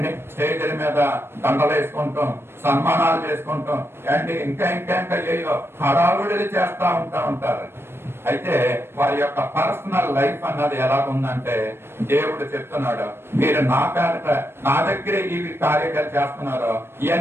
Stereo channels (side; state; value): left; late; 0.12 ms